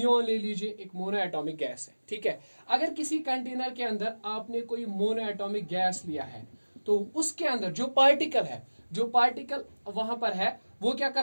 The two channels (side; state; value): both; inverted; correlation -1.00